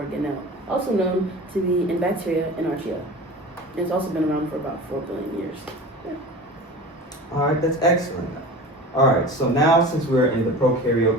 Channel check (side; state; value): both; normal; correlation 0.35